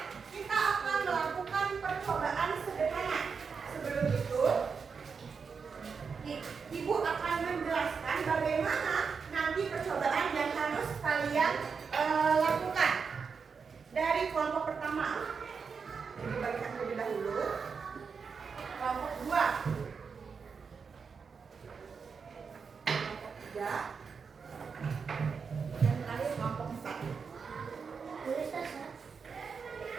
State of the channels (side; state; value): left; quieter; 5.6 dB